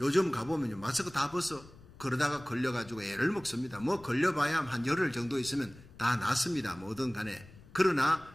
요즘 가보면요 마스크 다 벗어. 그러다가 걸려가지고 애를 먹습니다. 걸려봐야 한 열흘 정도 있으면 다 낫습니다. 뭐든 간에. 그러나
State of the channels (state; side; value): noise; left; rumble, 21 dB below the sound